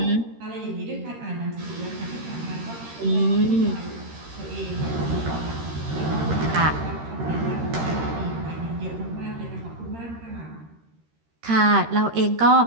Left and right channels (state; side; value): late; left; 13 ms